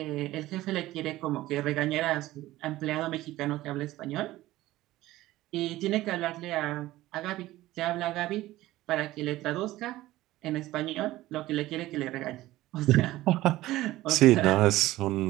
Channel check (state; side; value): quieter; left; 16.5 dB